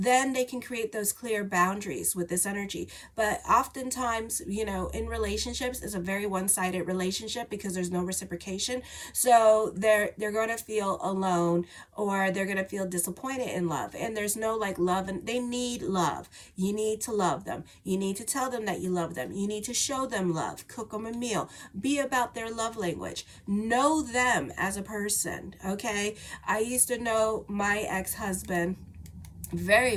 they can create those clear boundaries with this energy. But oftentimes, in relationships, it's a very one-sided relationship because there's no reciprocation. So they're going to feel alone, or they're going to feel disappointed in love, and there's no like love, and they need love. You need to love them. You need to tell them that you love them. You need to show them love, cook them a meal, be about their love language, know them as a person. Okay, I used to know my ex-husband very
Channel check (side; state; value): both; identical; correlation 1.00